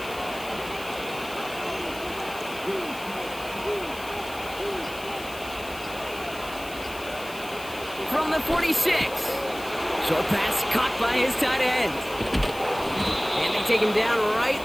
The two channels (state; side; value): noise; left; hiss, 16 dB below the sound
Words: From the 46. Short pass caught by his tight end. And they take him down right